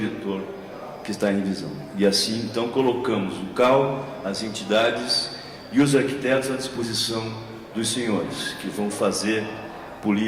que está em revisão. E assim, então, colocamos o CAU, as entidades e os arquitetos à disposição dos senhores, que vão fazer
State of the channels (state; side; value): identical; both; correlation 1.00